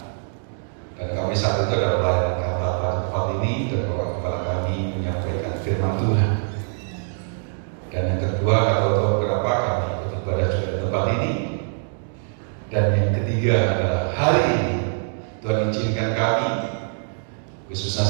dan kami saat itu adalah pelayanan kata tempat ini dan Bapak Gembala kami menyampaikan firman Tuhan. Dan yang kedua nggak tahu berapa kami ikut ibadah juga di tempat ini. Dan yang ketiga adalah hari ini Tuhan izinkan kami, khususnya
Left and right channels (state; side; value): silent; left; digital silence